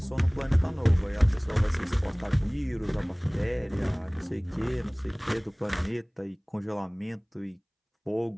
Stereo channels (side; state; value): both; identical; correlation 1.00